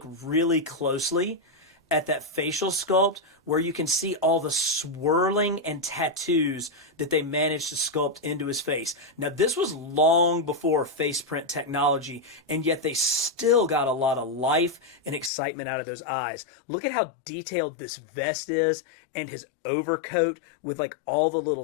really closely at that facial sculpt where you can see all the swirling and tattoos that they managed to sculpt into his face. Now, this was long before face print technology, and yet they still got a lot of life and excitement out of those eyes. Look at how detailed this vest is and his overcoat with like all the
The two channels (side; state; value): right; drops out; at 15.3 s